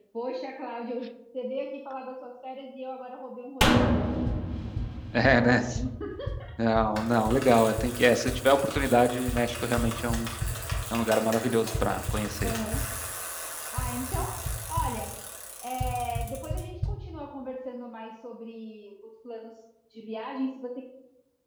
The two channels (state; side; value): identical; both; correlation 1.00